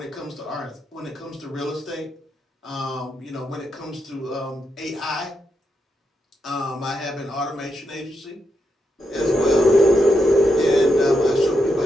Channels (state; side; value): normal; both; correlation 0.83